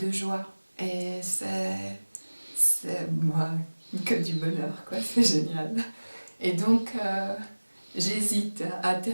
joie. Et c'est moi que du bonheur, quoi. C'est génial. Et donc, j'hésite à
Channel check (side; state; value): both; inverted; correlation -1.00